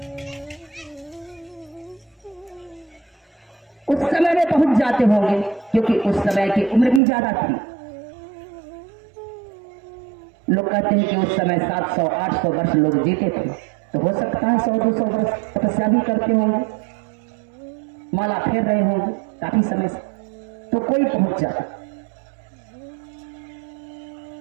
उस समय में पहुंच जाते होंगे, क्योंकि उस समय की उम्र भी ज्यादा थी। लोग कहते हैं कि उस समय 700-800 वर्ष लोग जीते थे, तो हो सकता है 100-200 वर्ष तपस्या भी करते होंगे, माला फेर रहे होंगे काफी समय से, तो कोई पहुंच जाता।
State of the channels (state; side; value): drops out; left; at 7.0 s